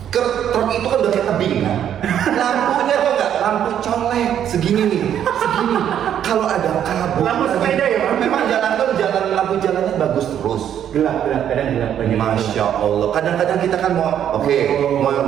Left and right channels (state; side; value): quieter; left; 9.8 dB